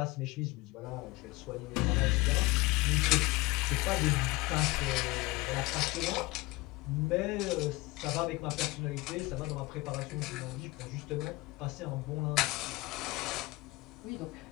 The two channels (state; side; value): quieter; right; 21.9 dB